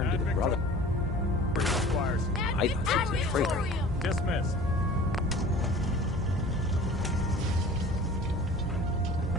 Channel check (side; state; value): both; normal; correlation 0.43